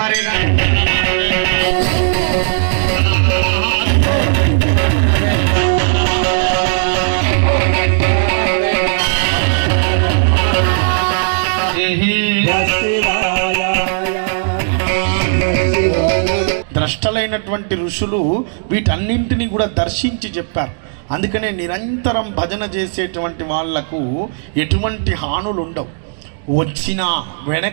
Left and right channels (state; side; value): silent; left; digital silence